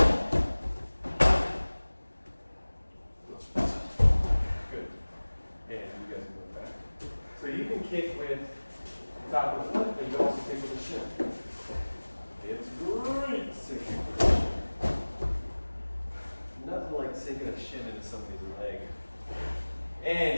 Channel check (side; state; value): both; inverted; correlation -1.00